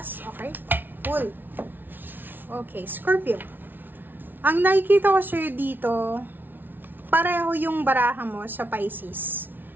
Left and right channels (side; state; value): left; late; 0.092 ms